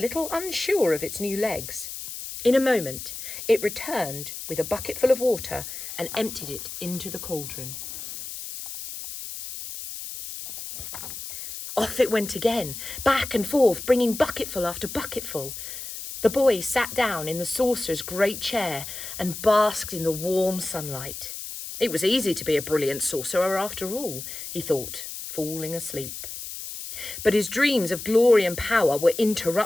unsure of its new legs. In a moment, it returned with a bucket full of water and emptied it into the cauldron. Off it went again, back and forth, bringing bucketful after bucketful. The boy sat down in the sorcerer's great chair and basked in the warm sunlight. It was easy to be a brilliant sorcerer after all, he thought, falling asleep. But his dreams of glory and power were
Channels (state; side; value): noise; left; hiss, 9 dB below the sound